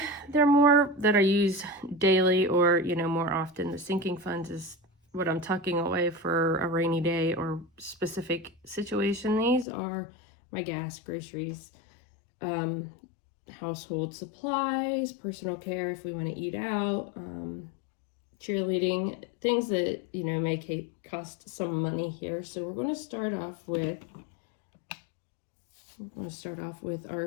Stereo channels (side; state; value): right; drops out; at 9.7 s